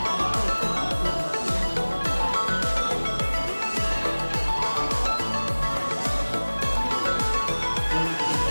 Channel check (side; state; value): both; inverted; correlation -1.00